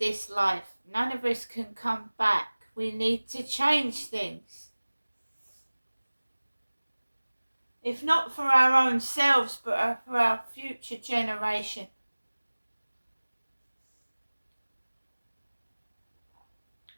life. None of us can come back. We need to change things. If not for our own selves, but for our future generation.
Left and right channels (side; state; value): both; inverted; correlation -1.00